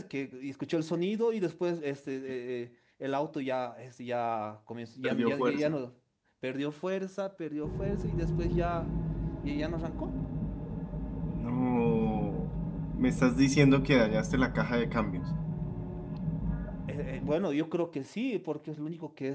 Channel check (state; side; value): identical; both; correlation 1.00